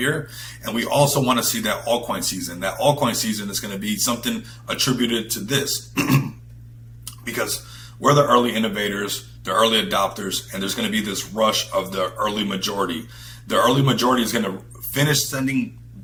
And we also want to see that altcoin season. That altcoin season is going to be something attributed to this because we're the early innovators, the early adopters, and there's going to be this rush of the early majority. The early majority is going to finish sending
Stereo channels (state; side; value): identical; both; correlation 1.00